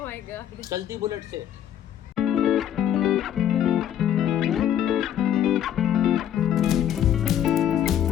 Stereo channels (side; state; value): right; quieter; 10.4 dB